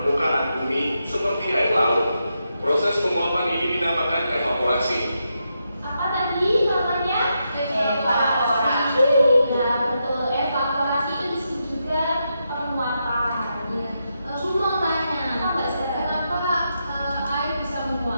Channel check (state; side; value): inverted; both; correlation -0.84